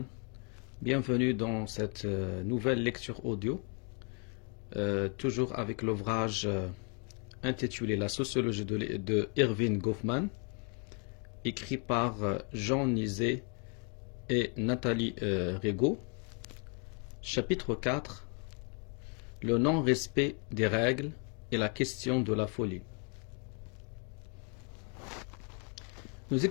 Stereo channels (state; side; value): quieter; right; 37.7 dB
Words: Bienvenue dans cette nouvelle lecture audio, toujours avec l'ouvrage intitulé La sociologie de Erving Goffman, écrit par Jean Nizet et Nathalie Rigaud. Chapitre 4, le non-respect des règles et la question de la folie. Nous